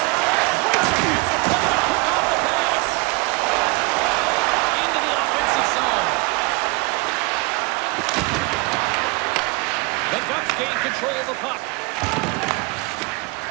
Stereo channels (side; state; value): left; quieter; 26.3 dB